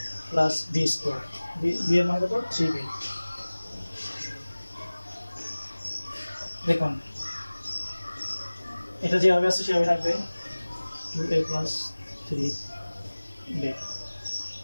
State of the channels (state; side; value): inverted; both; correlation -1.00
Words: plus b square, b এর মান কত? 3b। দেখুন এটা যেভাবে আছে সেভাবে থাকবে 2a + 3b।